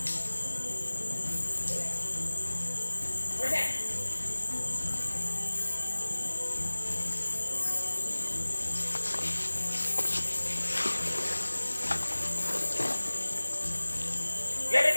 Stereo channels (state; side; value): inverted; both; correlation -1.00